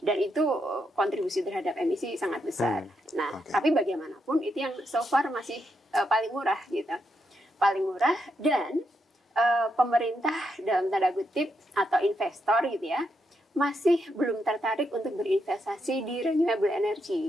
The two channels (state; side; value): normal; both; correlation 0.81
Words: Dan itu kontribusi terhadap emisi sangat besar. Tapi bagaimanapun itu yang so far masih paling murah gitu. Paling murah dan pemerintah dalam tanda kutip atau investor gitu ya masih belum tertarik untuk berinvestasi di renewable